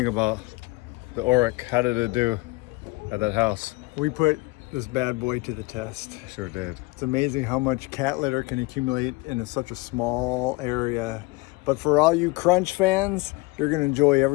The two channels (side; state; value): right; quieter; 23.4 dB